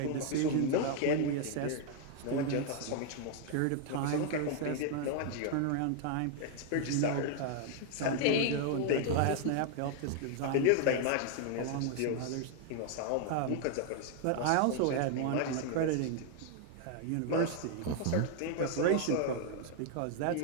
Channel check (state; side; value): different; both; correlation 0.00